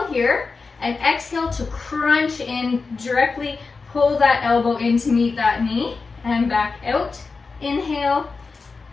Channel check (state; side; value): quieter; right; 4.4 dB